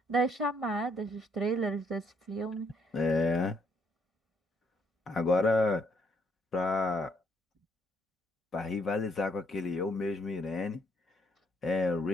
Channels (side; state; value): both; normal; correlation 0.70